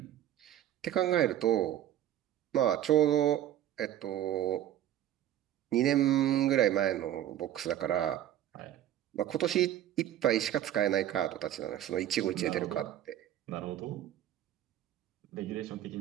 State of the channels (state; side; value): quieter; left; 11.8 dB